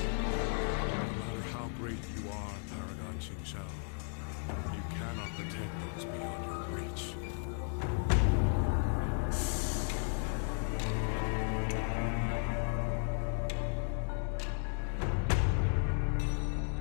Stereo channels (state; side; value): silent; right; 55 dB below the other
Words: No matter how great you are, Paragon Qingxiao, you cannot protect those beyond your reach.